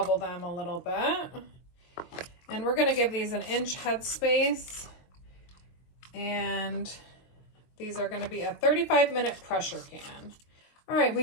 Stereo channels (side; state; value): right; late; 23 ms